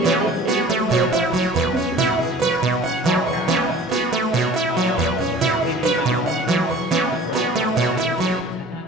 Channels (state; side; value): normal; both; correlation 0.46